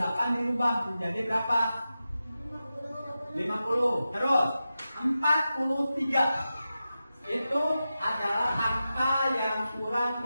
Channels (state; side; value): inverted; both; correlation -0.92